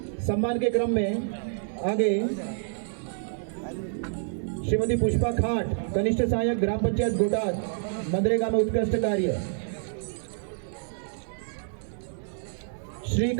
सम्मान के क्रम में आगे श्रीमती पुष्पा खाट, कनिष्ठ सहायक ग्राम पंचायत गोटाद, मनरेगा में उत्कृष्ट कार्य। श्री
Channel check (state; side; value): silent; left; digital silence